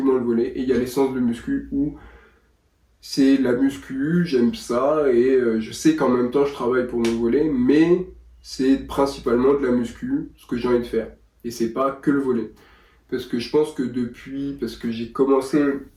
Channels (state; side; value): identical; both; correlation 1.00